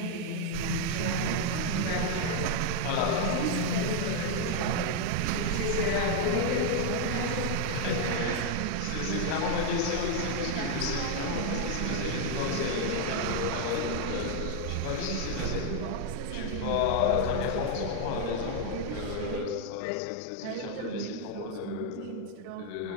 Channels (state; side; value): different; both; correlation 0.00